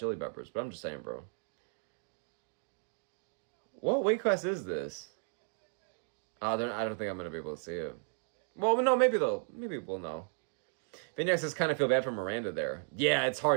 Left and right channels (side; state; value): left; silent; 55 dB below the other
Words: Peppers, but I'm just saying, bro. What weight class is this? I don't think I'm going to be able to see it. Well, no, maybe we'll know. Vignac says, kind of feel bad for Miranda there. Yeah, it's